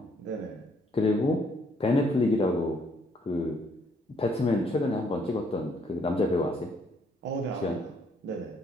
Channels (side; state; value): both; normal; correlation 0.67